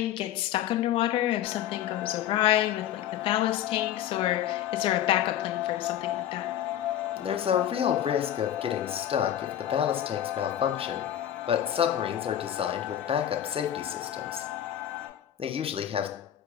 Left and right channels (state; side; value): quieter; right; 11.2 dB